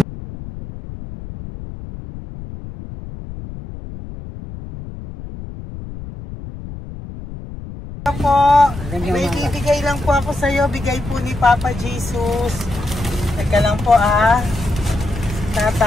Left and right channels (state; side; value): noise; left; rumble, 12 dB below the sound